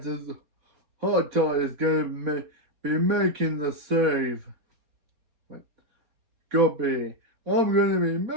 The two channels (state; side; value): late; left; 4.3 ms